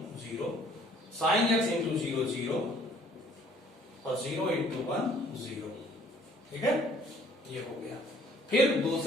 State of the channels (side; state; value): both; normal; correlation 0.58